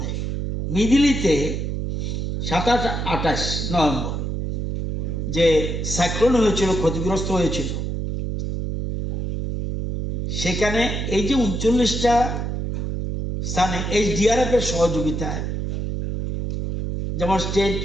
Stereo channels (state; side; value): noise; right; hum, 3 dB below the sound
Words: মিধিলিতে 27-28 নভেম্বর যে সাইক্লোন হয়েছিল, ক্ষতিগ্রস্ত হয়েছিল, সেখানে এই যে 39টা স্থানে HDRF এর সহযোগিতায়, যেমন স্টেট